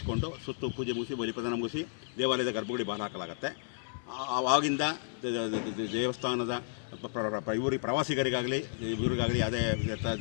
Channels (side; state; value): right; silent; digital silence